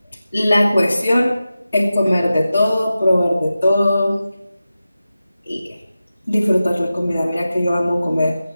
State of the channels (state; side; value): inverted; both; correlation -0.93